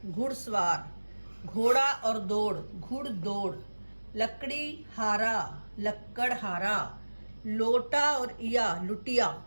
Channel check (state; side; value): inverted; both; correlation -1.00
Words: घुड़सवार, घोड़ा और दौड़, घुड़ दौड़, लकड़ी हारा, लक्कड़ हारा, लोटा और इया लुटिया,